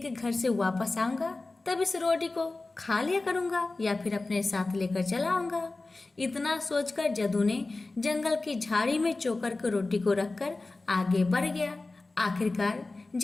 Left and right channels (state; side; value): quieter; right; 3.3 dB